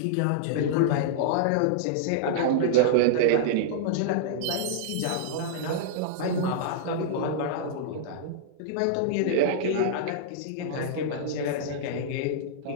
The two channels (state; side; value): different; both; correlation -0.01